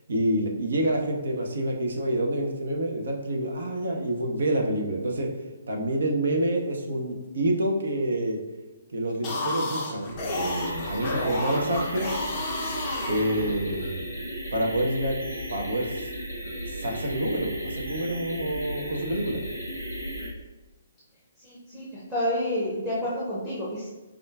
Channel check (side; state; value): both; inverted; correlation -0.67